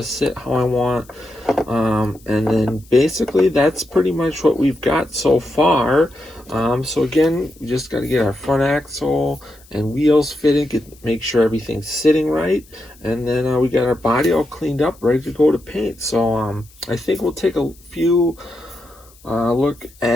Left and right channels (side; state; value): left; noise; hiss, 27 dB below the sound